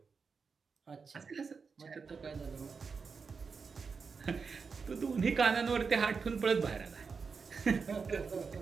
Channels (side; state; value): left; quieter; 5.2 dB